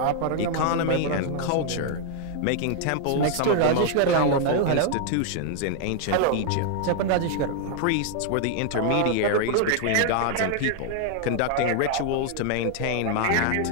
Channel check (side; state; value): both; different; correlation 0.00